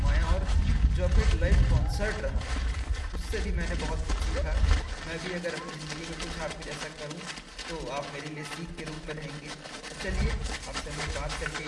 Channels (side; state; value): both; identical; correlation 1.00